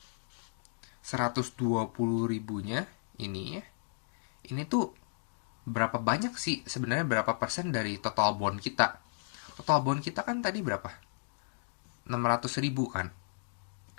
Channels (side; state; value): right; silent; digital silence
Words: 120.000-nya ini ya. Ini tuh berapa banyak sih sebenarnya, berapa persen dari total bond kita? Total bond kita kan tadi berapa? 600.000 kan.